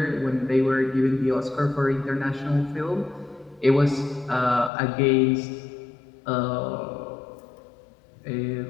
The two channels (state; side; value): drops out; right; at 4.7 s